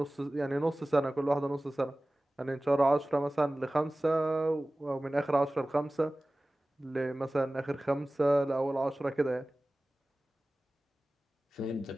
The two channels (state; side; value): normal; both; correlation 0.97